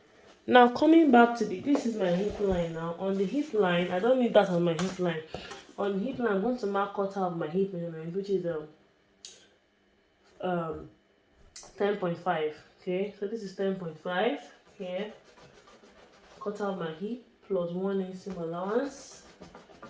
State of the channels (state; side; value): identical; both; correlation 1.00